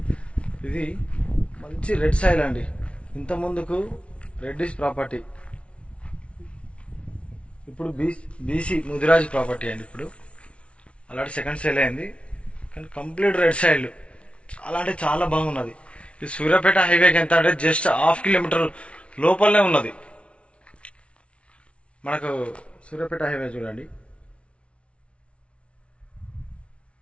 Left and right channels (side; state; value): right; late; 0.061 ms